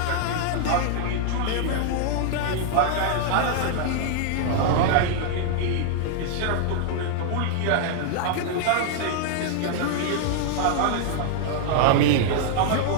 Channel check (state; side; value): different; both; correlation 0.00